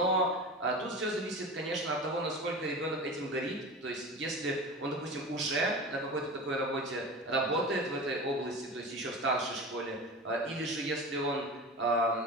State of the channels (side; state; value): both; normal; correlation 0.32